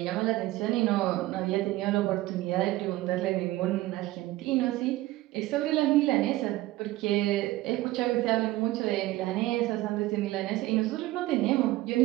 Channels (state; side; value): quieter; left; 17.4 dB